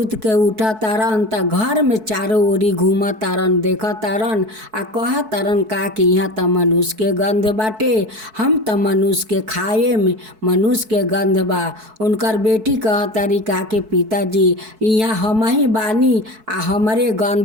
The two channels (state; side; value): late; left; 4.6 ms